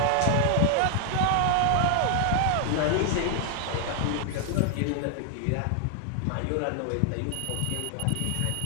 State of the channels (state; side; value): different; both; correlation 0.00